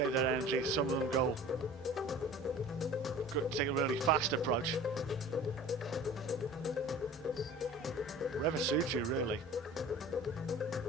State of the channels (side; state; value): both; normal; correlation 0.42